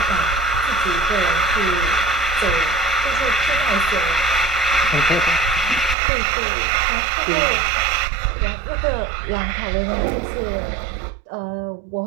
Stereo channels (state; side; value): drops out; left; at 6.0 s